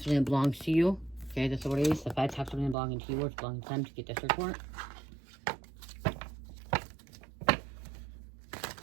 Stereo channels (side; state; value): left; drops out; at 2.8 s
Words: that belongs to you. Okay, that's what it is. The feds have something belonging to you or it's belonging to them to get this report.